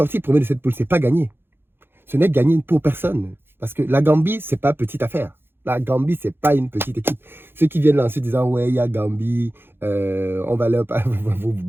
premier de cette poule, ce n'est pas gagner. Ce n'est gagné pour personne. Parce que la Gambie, ce n'est pas petite affaire. La Gambie, ce n'est pas une petite équipe. Ceux qui viennent là en se disant, ouais, il y a Gambie, on va leur... vous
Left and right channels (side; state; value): left; late; 0.10 ms